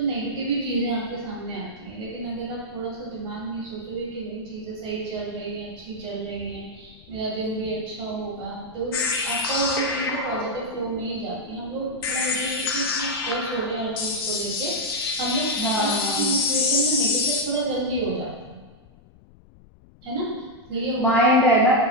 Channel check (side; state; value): left; noise; rumble, 24 dB below the sound